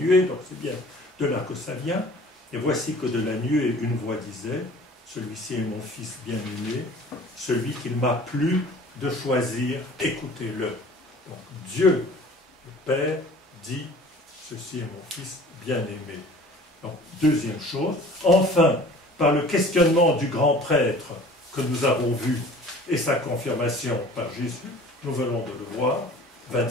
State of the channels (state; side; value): normal; both; correlation 0.47